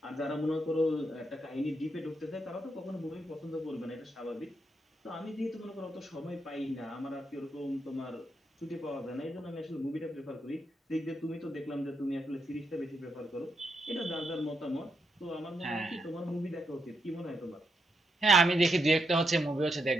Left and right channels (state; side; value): normal; both; correlation 0.82